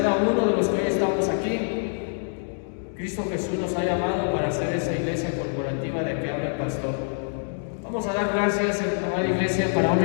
uno de los que hoy estamos aquí, Cristo Jesús nos ha llamado para hacer esa iglesia corporativa de que habla el pastor. Vamos a dar gracias, amada iglesia, para honra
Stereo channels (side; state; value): right; silent; digital silence